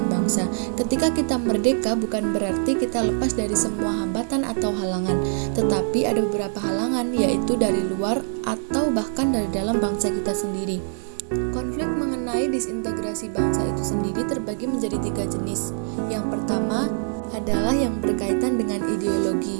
bangsa. Ketika kita merdeka bukan berarti kita lepas dari semua hambatan atau halangan, tetapi ada beberapa halangan, yaitu dari luar atau bahkan dari dalam bangsa kita sendiri. Konflik mengenai disintegrasi bangsa itu sendiri terbagi menjadi 3 jenis. Yang pertama adalah yang berkaitan dengan ideologi.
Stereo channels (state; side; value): silent; left; digital silence